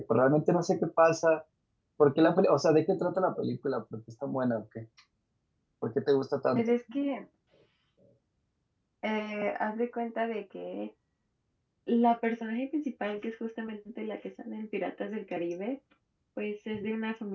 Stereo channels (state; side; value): identical; both; correlation 1.00